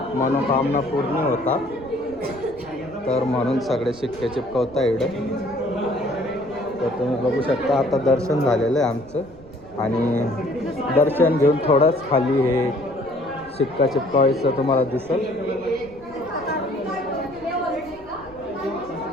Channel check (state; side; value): noise; right; rumble, 22 dB below the sound